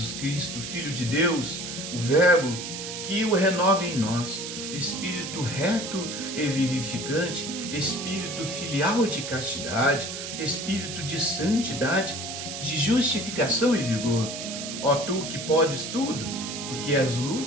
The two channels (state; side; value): noise; right; hiss, 7 dB below the sound